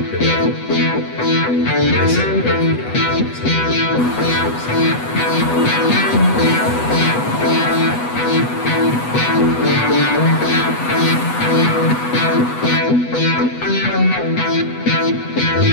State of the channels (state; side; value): late; right; 8.1 ms